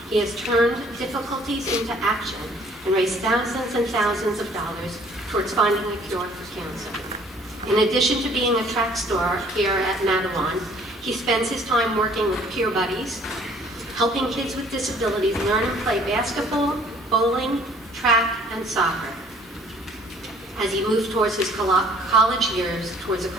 he has turned difficulties into action and raised thousands and thousands of dollars towards finding a cure for cancer. In addition to being a track star here at Madawan, he spends his time working with peer buddies, helping kids with disabilities learn and play basketball, bowling, track, and soccer. As he moves towards his college years towards a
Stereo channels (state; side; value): normal; both; correlation 0.57